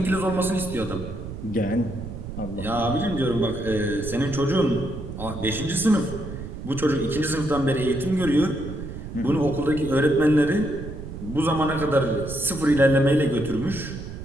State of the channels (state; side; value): noise; right; rumble, 9 dB below the sound